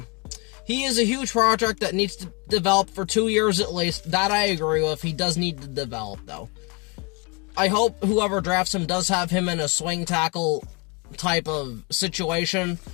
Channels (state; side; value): quieter; right; 31.1 dB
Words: he is a huge project that needs to develop for 2 years at least. That I agree with. He does need to develop, though. I hope whoever drafts him does have him in a swing tackle type of situation,